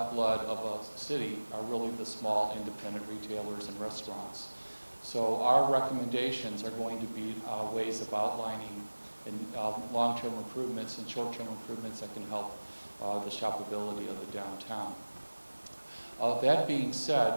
of a city are really the small independent retailers and restaurants. So our recommendations are going to be ways of outlining long-term improvements and short-term improvements that can help the shoppability of the downtown. That being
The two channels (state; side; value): inverted; both; correlation -1.00